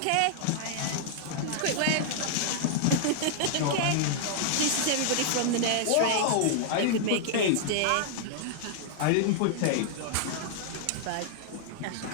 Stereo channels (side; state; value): both; different; correlation -0.01